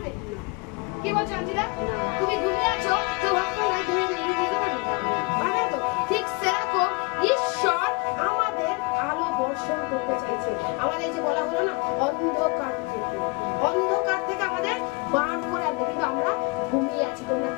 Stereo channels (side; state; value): right; quieter; 29.2 dB